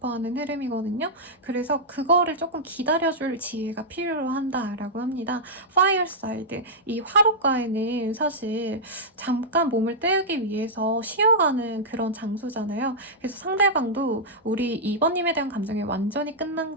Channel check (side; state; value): both; normal; correlation -0.10